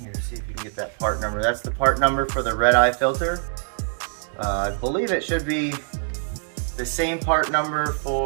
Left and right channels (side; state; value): left; silent; digital silence